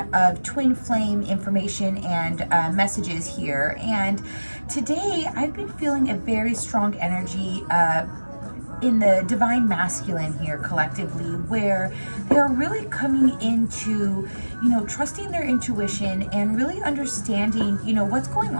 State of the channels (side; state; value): both; inverted; correlation -1.00